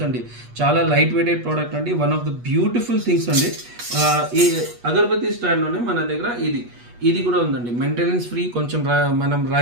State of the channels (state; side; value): late; left; 8.3 ms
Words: అండి. చాలా లైట్ వెయిటెడ్ ప్రోడక్ట్ అండి. One of the beautiful things అండి. ఈ అగరబత్తి స్టాండ్లోనే మన దగ్గర ఇది కూడా ఉందండి. Maintenance free. కొంచెం మనం